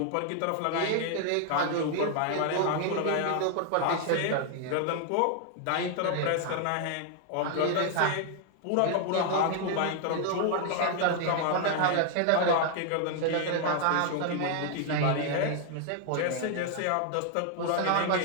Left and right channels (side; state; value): both; different; correlation 0.00